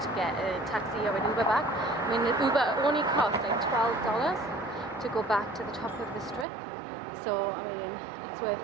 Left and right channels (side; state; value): left; drops out; at 6.5 s